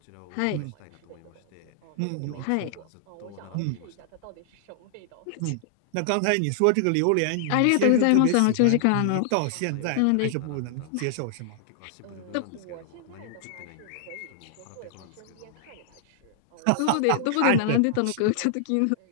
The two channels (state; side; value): different; both; correlation -0.01